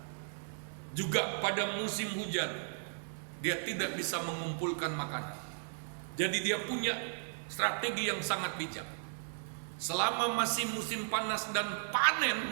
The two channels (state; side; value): silent; left; digital silence